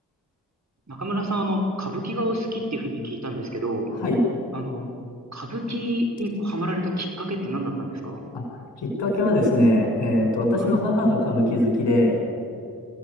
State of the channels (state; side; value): normal; both; correlation 0.55